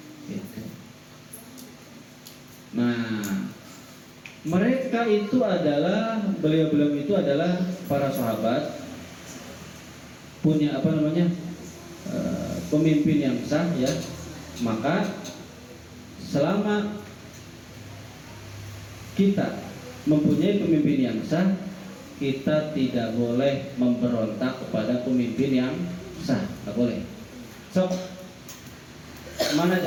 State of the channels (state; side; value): identical; both; correlation 1.00